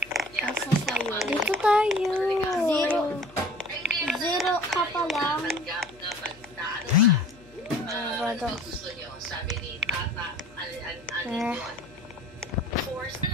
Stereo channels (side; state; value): left; noise; hum, 25 dB below the sound